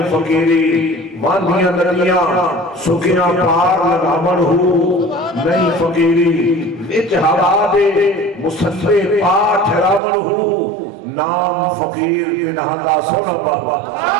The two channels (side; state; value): left; drops out; at 10.0 s